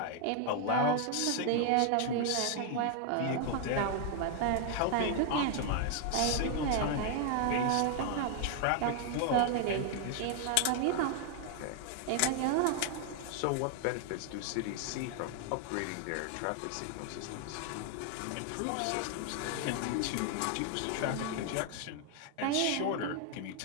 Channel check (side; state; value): both; different; correlation 0.00